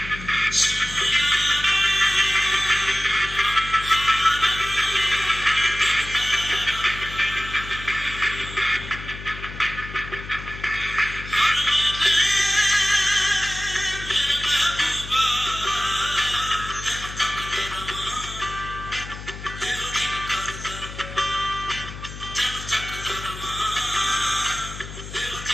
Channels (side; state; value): left; noise; hum, 12 dB below the sound